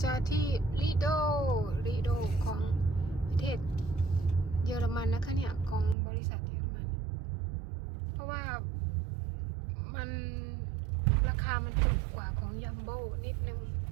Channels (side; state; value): left; drops out; at 6.0 s